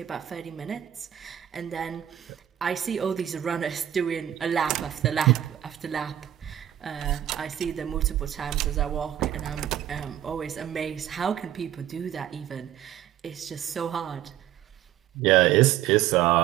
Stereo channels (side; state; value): left; quieter; 11.4 dB